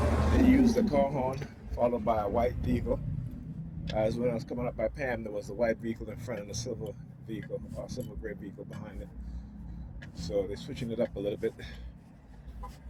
They used the car horn, followed by a white vehicle. As when I was coming up by Pam, there was a white vehicle in front and a silver vehicle, or silver gray vehicle behind it. So they're switching it up a little bit.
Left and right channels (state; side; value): identical; both; correlation 1.00